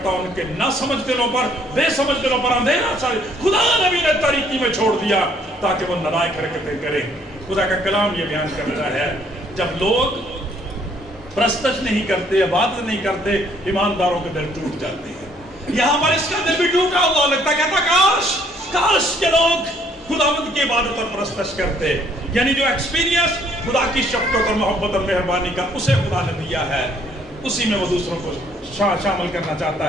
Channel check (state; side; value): normal; both; correlation 0.64